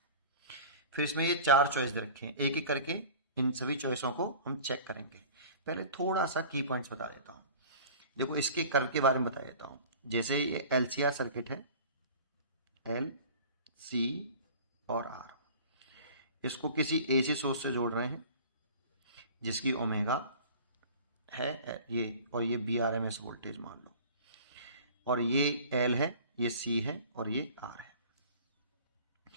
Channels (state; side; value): inverted; both; correlation -0.42